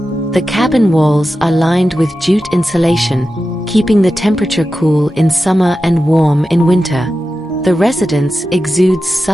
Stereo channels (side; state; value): both; normal; correlation 0.92